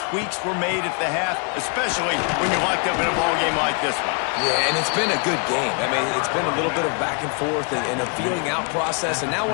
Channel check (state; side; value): quieter; right; 35.9 dB